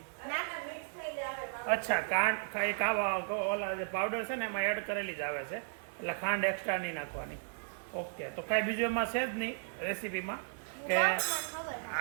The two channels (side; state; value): left; silent; digital silence